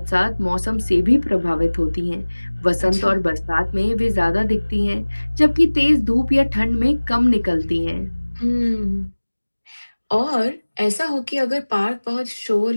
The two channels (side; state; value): both; inverted; correlation -1.00